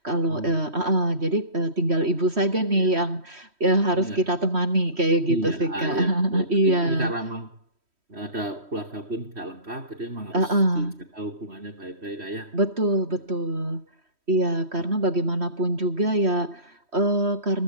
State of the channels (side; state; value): left; late; 3.1 ms